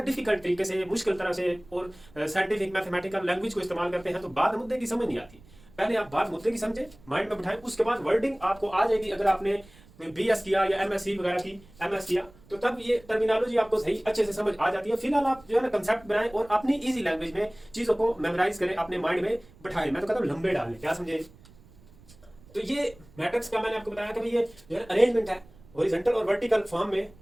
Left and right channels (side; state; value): right; noise; rumble, 25 dB below the sound